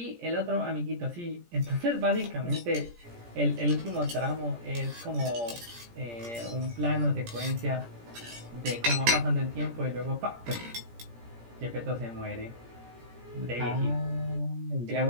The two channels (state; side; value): late; left; 17 ms